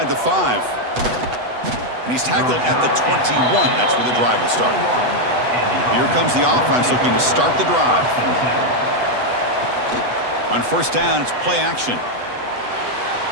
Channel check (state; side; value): late; left; 8.0 ms